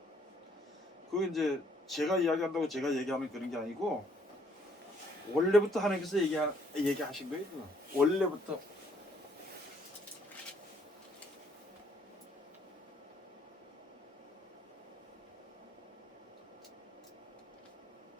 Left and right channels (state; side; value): normal; both; correlation 0.66